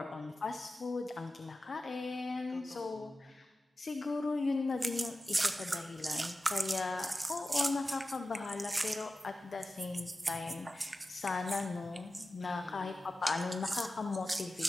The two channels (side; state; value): both; normal; correlation 0.94